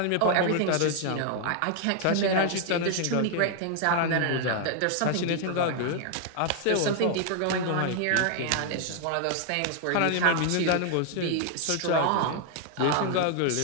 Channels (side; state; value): both; different; correlation 0.00